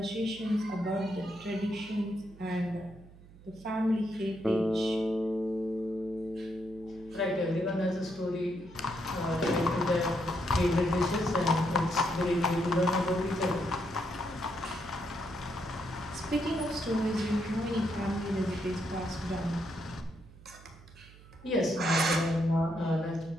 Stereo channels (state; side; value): noise; right; hum, 21 dB below the sound